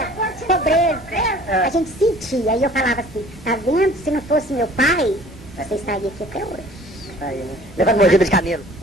pobreza. A gente sentia. Aí eu falava assim, tá vendo? Se não fosse meu pai, você estaria aqui até hoje. Aí, né? Levando mordida de camelo.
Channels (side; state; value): both; normal; correlation 0.50